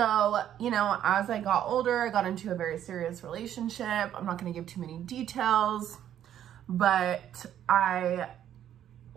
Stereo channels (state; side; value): quieter; left; 10.7 dB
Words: you know, as I got older, I got into a very serious relationship. I'm not going to give too many details, but I